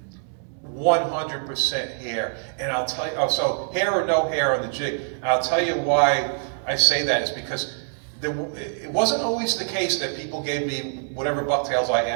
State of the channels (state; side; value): silent; left; 62 dB below the other